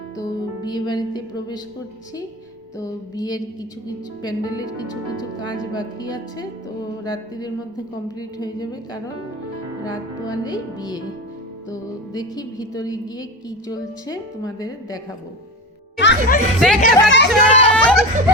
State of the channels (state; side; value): normal; both; correlation 0.26